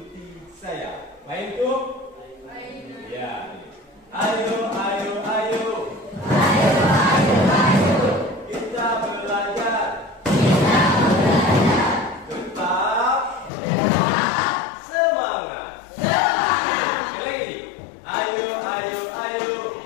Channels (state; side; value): drops out; right; at 13.5 s